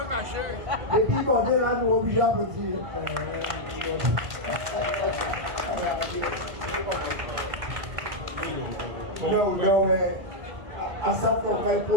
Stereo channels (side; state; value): left; late; 1.9 ms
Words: caché. Et puis, quand on est là, nous obligés à petit. Non, mais à ça, on va